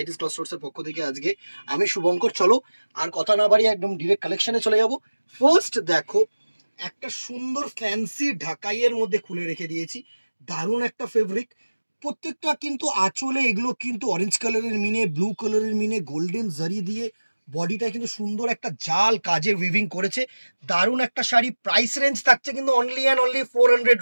ক্লথ স্টোর্সের পক্ষ থেকে। আজকে আমি শুভঙ্কর, চলো আর কথা না বাড়িয়ে একদম ডিরেক্ট কালেকশনে চলে যাব। ফার্স্ট দেখো, একটা সুন্দর ফ্যান্সি ঢাকাইয়ের মধ্যে খুলে রেখে দিয়েছি, দারুণ একটা ফেব্রিক। প্রত্যেকটা কিন্তু আঁচলে এগুলো কিন্তু অরেঞ্জ কালারের মিনে, ব্লু কালারের মিনে, গোল্ডেন জারি দিয়ে বডিটা কিন্তু সুন্দর একটা জাল কাজের উইভিং করেছে। দারুণ একটা শাড়ি। প্রাইস রেঞ্জ থাকছে কিন্তু অনলি অ্যান্ড অনলি 400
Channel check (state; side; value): inverted; both; correlation -1.00